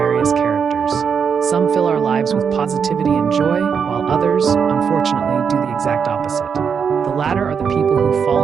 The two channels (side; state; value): left; quieter; 6.6 dB